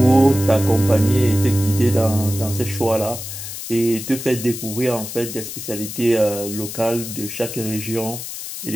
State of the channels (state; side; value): noise; left; hiss, 9 dB below the sound